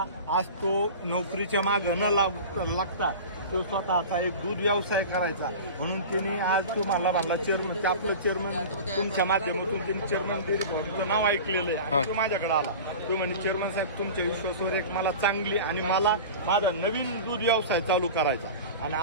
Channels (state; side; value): inverted; both; correlation -0.34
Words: आज तो नोकरीच्या मागे न लागता तो स्वतःचा एक दूध व्यवसाय करायचा म्हणून त्यांनी आज तुम्हाला म्हणला चेअरमन आपलं चेअरमन तुमच्या माध्यमातून त्यांनी चेअरमन डेअरी फार्मचं नाव ऐकलेलं आहे आणि तो माझ्याकडे आला. तो म्हणे चेअरमन साहेब तुमच्या विश्वासावर एक मला चांगली आणि मला माझा नवीन दूध व्यवसाय चालू करायचा आणि